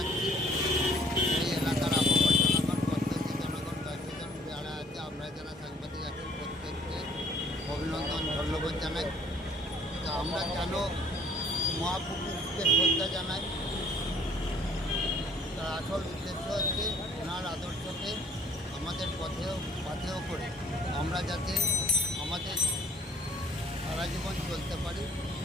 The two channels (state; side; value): normal; both; correlation 0.57